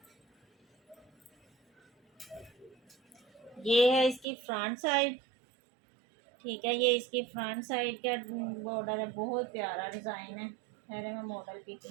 ये है इसकी फ्रंट साइड, ठीक है। ये इसकी फ्रंट साइड का बॉर्डर है, बहुत प्यारा डिज़ाइन है। पहले मैं मॉडल पिक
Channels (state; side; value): drops out; left; at 4.2 s